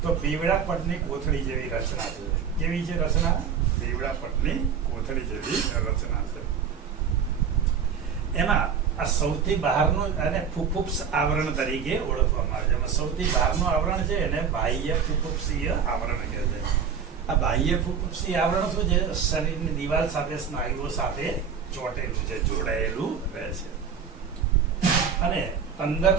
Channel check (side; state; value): left; quieter; 7.0 dB